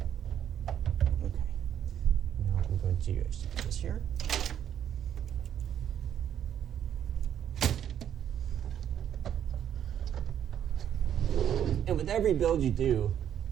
Okay. Now I'm going to actually put this here. And with every build you do,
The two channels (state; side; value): quieter; left; 9.7 dB